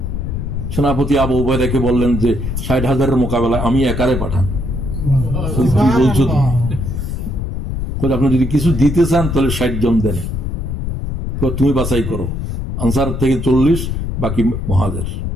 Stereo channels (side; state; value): left; noise; rumble, 3 dB below the sound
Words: সেনাপতি আবু উবাইদাকে বললেন যে ৬০,০০০ মোকাবেলায় আমি একারে পাঠান। কি বলছো তুমি? আপনি যদি কিছু দিতে চান তাহলে ৬০ জন দেন, তুমি বাছাই করো। আনসার থেকে ৪০, বাকি মুহাজির।